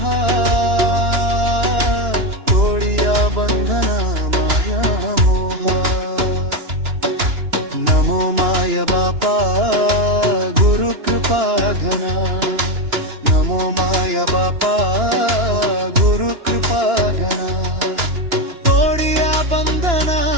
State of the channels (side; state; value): left; late; 2.9 ms